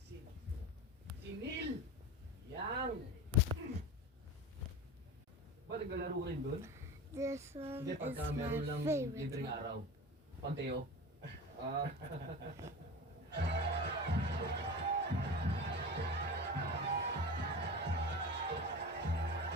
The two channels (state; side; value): normal; both; correlation 0.30